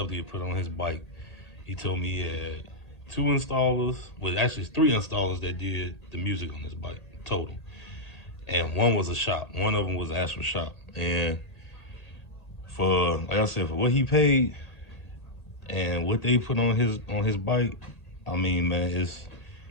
that he put on his bike, he told me he had 2 installers, well actually 3 installers that did the music on his bike total. And one was a shop. One of them was an actual shop. And for, like I said, for what he paid and what they put on his bike, I mean, man,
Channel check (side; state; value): right; late; 1.8 ms